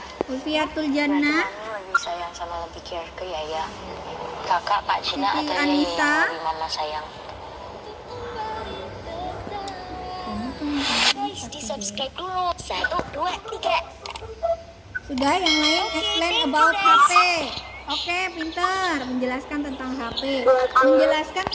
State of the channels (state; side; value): identical; both; correlation 1.00